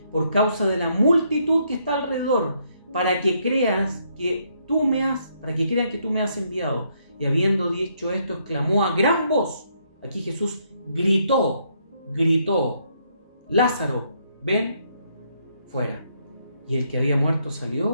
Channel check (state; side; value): inverted; both; correlation -0.73